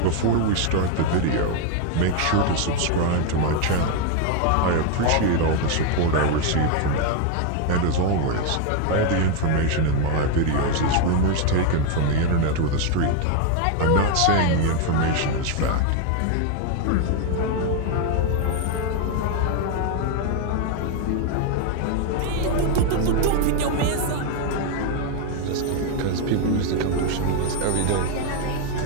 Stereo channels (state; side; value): different; both; correlation 0.01